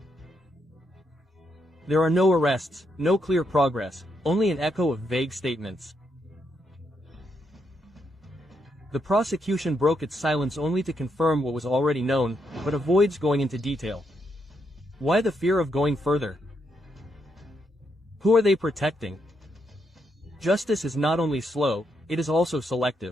There are no arrests, no clear progress, only an echo of vague statements. The prosecution broke its silence only to confirm what was already known, but avoids going into detail. Why the fear of going further? Who are they protecting? Justice is not only slow, it is also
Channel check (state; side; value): normal; both; correlation 0.79